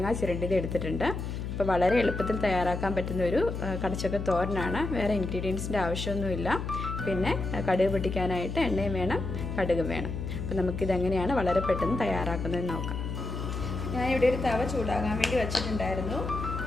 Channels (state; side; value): noise; left; hum, 5 dB below the sound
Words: ചിരണ്ടിയത് എടുത്തിട്ടുണ്ട്. അപ്പോൾ വളരെ എളുപ്പത്തിൽ തയ്യാറാക്കാൻ പറ്റുന്ന ഒരു കടച്ചക്ക തോരനാണ്. വേറെ ഇൻഗ്രീഡിയൻസിൻ്റെ ആവശ്യമൊന്നുമില്ല. പിന്നെ കടുക് പൊട്ടിക്കാനായിട്ട് എണ്ണയും വേണം, കടുകും വേണം. അപ്പോൾ നമുക്കിതെങ്ങനെയാണ് വളരെ പെട്ടെന്ന് തയ്യാറാക്കുന്നതെന്ന് നോക്കാം. ഞാനിവിടെ ഒരു തവ ചൂടാകാൻ വേണ്ടി വെച്ചിട്ടുണ്ടായിരുന്നു.